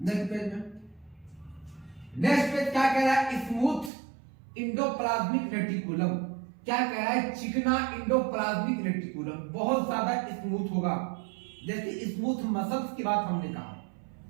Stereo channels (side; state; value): left; drops out; at 3.9 s